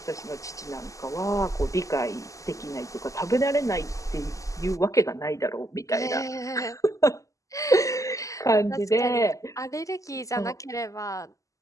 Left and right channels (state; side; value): late; right; 0.16 ms